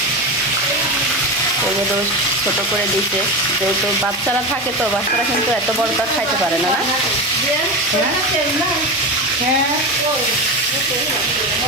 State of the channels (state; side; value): normal; both; correlation 0.21